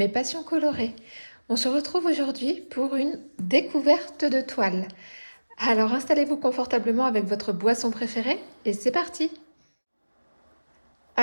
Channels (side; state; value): both; inverted; correlation -1.00